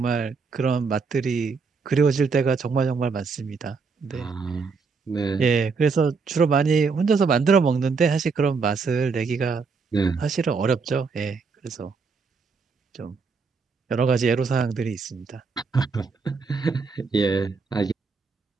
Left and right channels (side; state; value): left; quieter; 4.9 dB